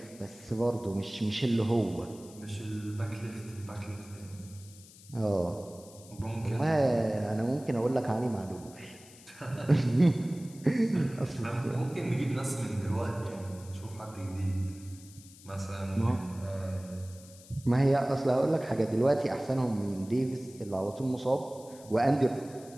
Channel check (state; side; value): noise; left; hiss, 21 dB below the sound